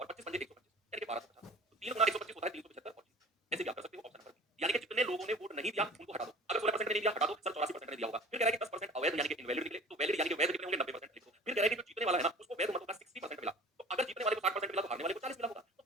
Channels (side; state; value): both; normal; correlation 0.43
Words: 25 पंजे 125, यानी कि 1250। तो 3 गुना 125 होता है 375 और 30। ऐसे भी आप कर सकते हो ऑप्शन नंबर बी। यानी कि जितने लोगों ने वोट नहीं दिया उनको हटा दो। अगर 16% ने नहीं दिया हटा दो, सर 84% ने दिया होगा। फिर कह रहा है कि 10% अवैध यानी कि इनवैलिड निकले, तो वैलिड यानी कि वैध कितने होंगे? 90% लिख दो। फिर कह रहा है कि जो जीतने वाला है ना उसको वैध मतों का 60% मिला। तो अगर जीतने वाले को 60% मिला तो हारने वाले को 40 मिला होगा। तो